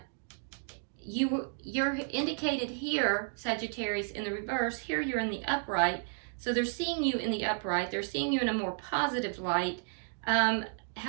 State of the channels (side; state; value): left; silent; 56 dB below the other